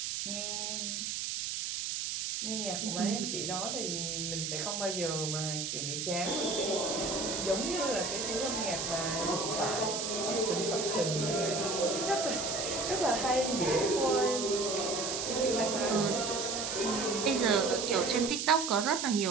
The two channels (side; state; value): right; noise; hiss, 2 dB below the sound